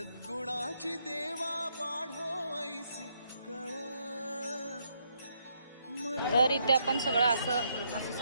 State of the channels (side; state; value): both; inverted; correlation -0.75